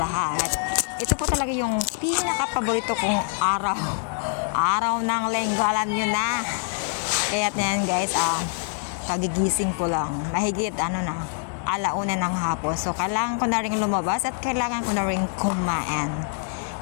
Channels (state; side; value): silent; right; digital silence